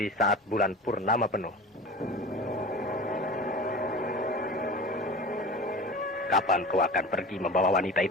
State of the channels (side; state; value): both; normal; correlation 0.35